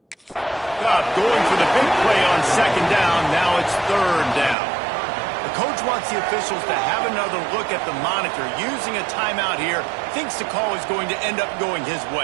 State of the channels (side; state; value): left; drops out; at 4.5 s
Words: Going for the big play on 2nd down. Now it's 3rd down. The coach wants the officials to have another look at the monitor. Using a timeout here, thinks the call is going to end up going his